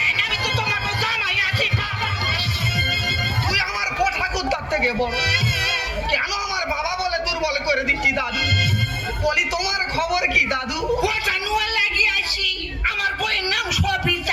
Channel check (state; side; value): identical; both; correlation 1.00